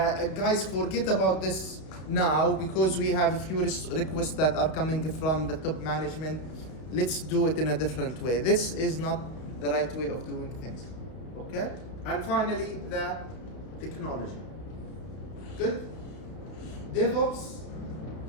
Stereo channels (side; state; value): right; late; 32 ms